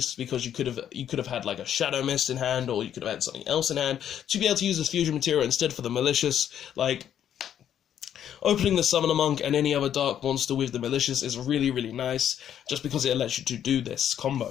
because you could have had like a Shadow Mist in hand, or you could have had something else in hand to be able to use this fusion material instead for the Malicious. Like, opening the Summoner Monk and any other dark monster with the Malicious is really, really nice, just because it lets you to do this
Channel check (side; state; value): right; quieter; 9.9 dB